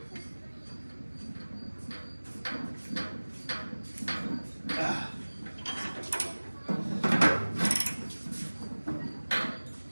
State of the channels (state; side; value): inverted; both; correlation -1.00